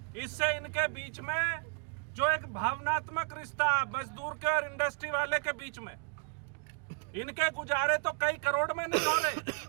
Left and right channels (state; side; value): quieter; left; 39.4 dB